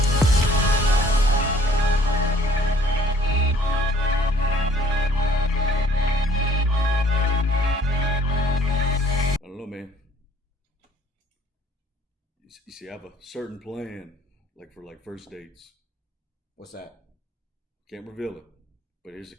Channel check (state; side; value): normal; both; correlation 0.59